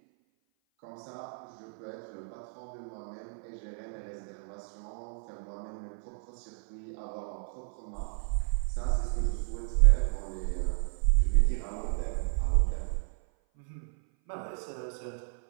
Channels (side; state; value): left; silent; 55 dB below the other